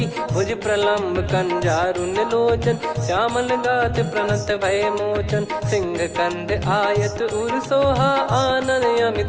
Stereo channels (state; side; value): identical; both; correlation 1.00